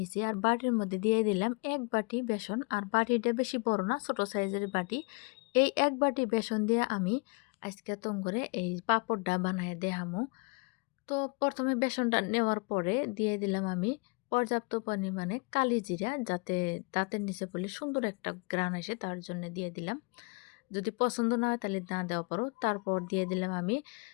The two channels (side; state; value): right; quieter; 31.7 dB